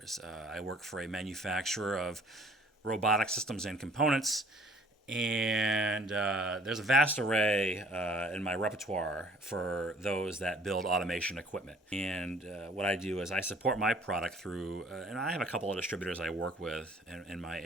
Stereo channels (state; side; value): normal; both; correlation 0.55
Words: I work for a manufacturer of robotic systems and components, and there's a vast array in my repertoire for those that build automation equipment. And what I do is I support my product through, and I have a couple of distributors I work with in my